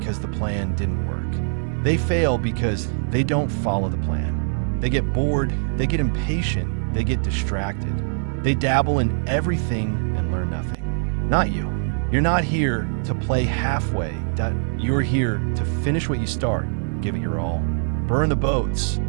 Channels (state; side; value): silent; left; digital silence